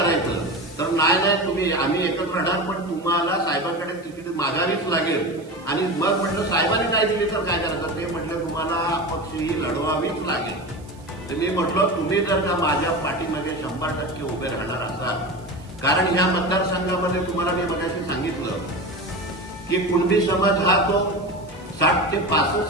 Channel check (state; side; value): noise; right; hiss, 28 dB below the sound